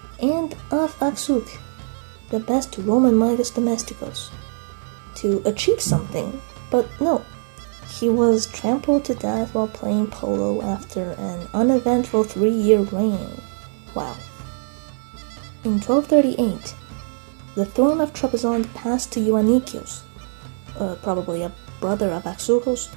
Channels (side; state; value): left; silent; 58 dB below the other